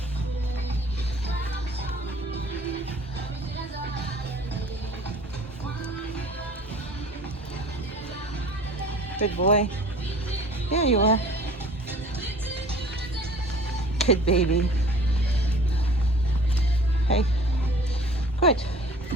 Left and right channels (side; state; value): both; normal; correlation 0.48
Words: Good boy. There you are. Good baby. Hey. Good.